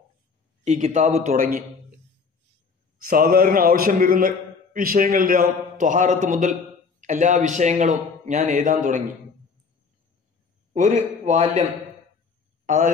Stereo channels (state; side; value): quieter; right; 5.0 dB